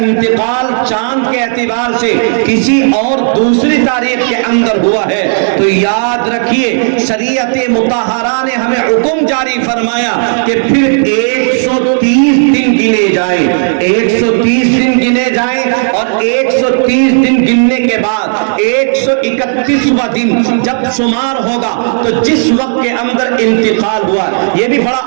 چاند کے اعتبار سے کسی اور دوسری تاریخ کے اندر ہوا ہے تو یاد رکھیے شریعت مطہرہ نے ہمیں حکم جاری فرمایا کہ پھر 130 دن گنے جائیں، 130 دن گنے جائیں اور 130 دن گننے کے بعد 131واں دن جب شمار ہوگا تو جس وقت کے اندر انتقال ہوا، یہ بھی بڑا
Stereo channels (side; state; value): left; silent; digital silence